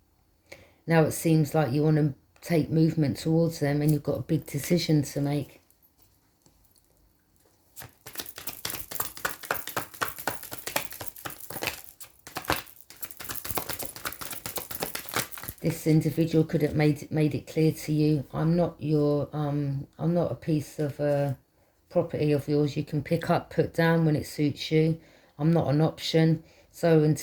Now it seems like you want to take movement towards them and you've got a big decision to make. This individual could have made it clear to you, I'm not a piece of property of yours you can pick up, put down when it suits you. I'm not an option. So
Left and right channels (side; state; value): both; identical; correlation 1.00